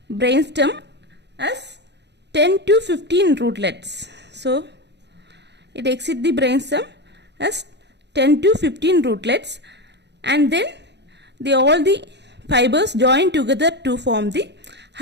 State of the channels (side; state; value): left; late; 0.50 ms